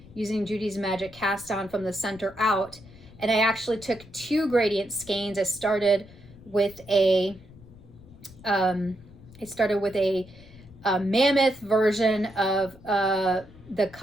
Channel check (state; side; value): noise; left; rumble, 21 dB below the sound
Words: using Judy's Magic cast on from the center out. And I actually took two gradient skeins. I started with a mammoth version of the